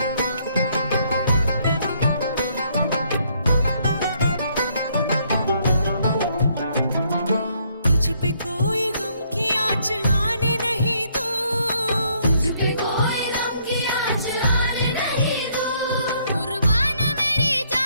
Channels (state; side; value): inverted; both; correlation -0.68